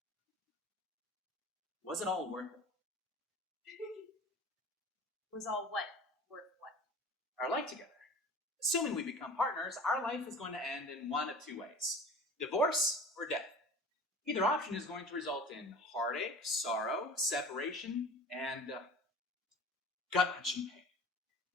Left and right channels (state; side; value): normal; both; correlation 0.39